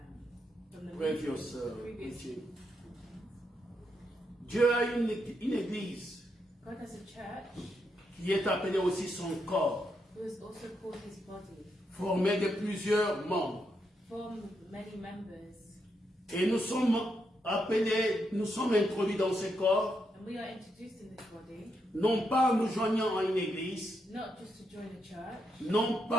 previous previous, teaching, Dieu a une église God has a church qui est appelée aussi son corps, who is also called His body, formé de plusieurs membres. formed of many members, Et nous sommes appelés, nous sommes introduits dans ce corps, and we are introduced in this body non pas en nous joignant à une église, not just to join a church, non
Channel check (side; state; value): both; normal; correlation 0.81